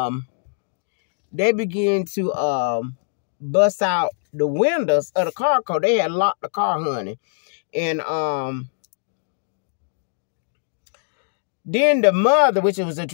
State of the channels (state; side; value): silent; right; digital silence